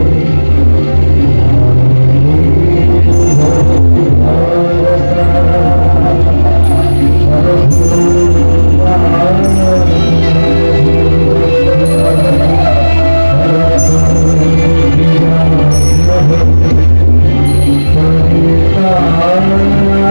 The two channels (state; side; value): inverted; both; correlation -1.00